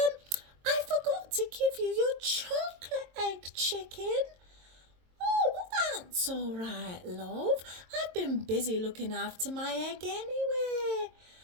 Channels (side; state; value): left; late; 22 ms